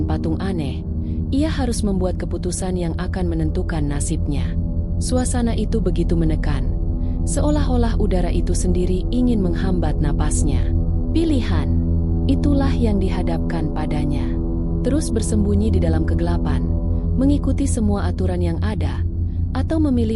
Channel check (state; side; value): identical; both; correlation 1.00